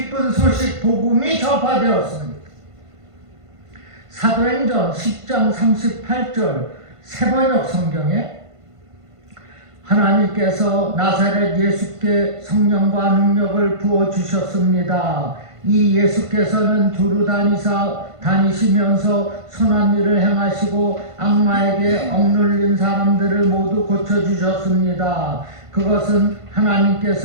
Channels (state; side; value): late; left; 1.5 ms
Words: 소식 복음이 전파되었습니다. 사도행전 10장 38절 새번역 성경에 하나님께서 나사렛 예수께 성령과 능력을 부어주셨습니다. 이 예수께서는 두루 다니시면서 선한 일을 행하시고 악마에게 억눌린 사람들을 모두 고쳐주셨습니다. 그것은